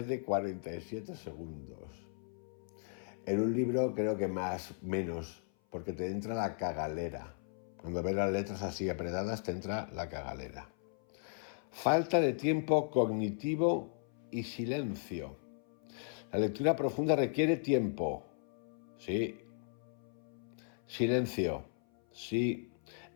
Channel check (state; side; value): silent; right; 53 dB below the other